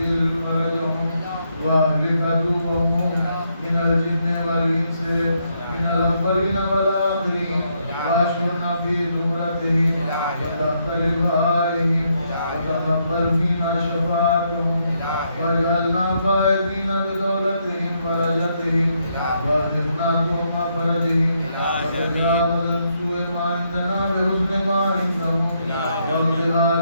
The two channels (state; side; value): inverted; both; correlation -0.76